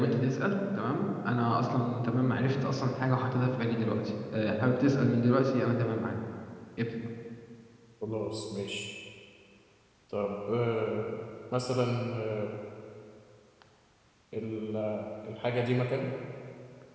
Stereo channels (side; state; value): both; identical; correlation 1.00